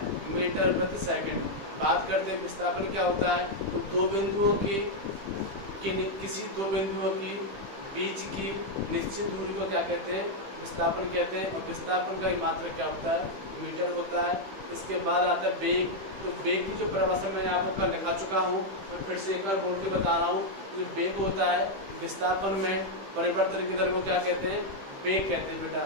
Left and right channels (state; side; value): late; left; 15 ms